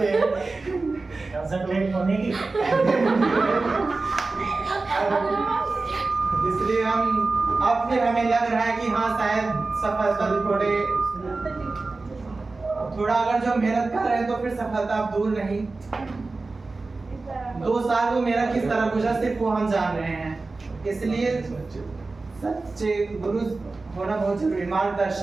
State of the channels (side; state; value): left; quieter; 3.6 dB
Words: हैं कंसंट्रेट होने की। इसलिए हम अब फिर हमें लग रहा है कि हाँ शायद सफलता थोड़ा अगर जो मेहनत कर रहे हैं तो फिर सफलता अब दूर नहीं। 2 साल वो मेरा किस तरह गुजरा सिर्फ वो हम जान रहे हैं। इसलिए सच्चे गुरु होना बहुत जरूरी।